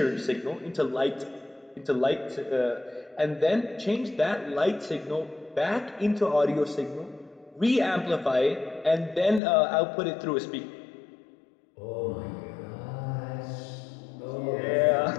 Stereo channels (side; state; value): right; drops out; at 9.4 s